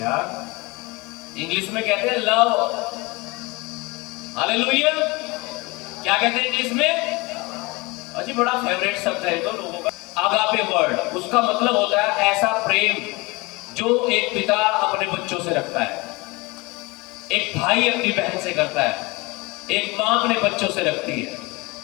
इंग्लिश में कहते हैं लव। हालेलुया। क्या कहते हैं इंग्लिश में? अजी बड़ा फेवरेट शब्द है तो लोगों का। आगापे वर्ड, उसका मतलब होता है ऐसा प्रेम जो एक पिता अपने बच्चों से रखता है, एक भाई अपनी बहन से करता है, एक मां अपने बच्चों से रखती है।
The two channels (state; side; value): quieter; right; 24.6 dB